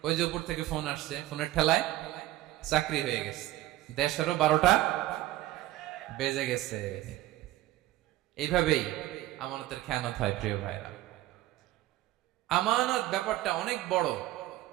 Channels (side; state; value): left; quieter; 15.4 dB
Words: ওই যে উপর থেকে ফোন আসছে, ফোনের ঠেলায় চাকরি হয়ে গেছে। দেশেরও 12টা বেজে গেছে। এইভাবেই আমানতের খেয়ানত হয়। প্রিয় ভাইরা, আমানত ব্যাপারটা অনেক বড়।